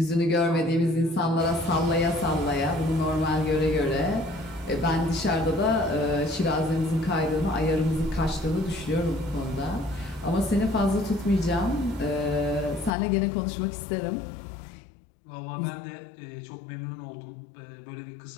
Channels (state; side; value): drops out; right; at 12.9 s